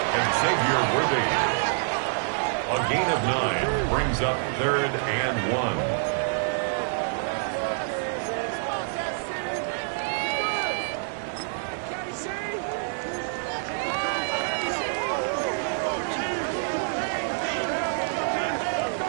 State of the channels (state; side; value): silent; left; digital silence